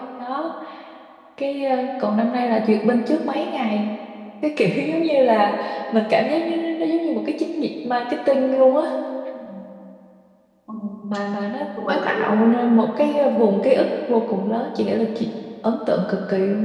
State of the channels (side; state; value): both; identical; correlation 1.00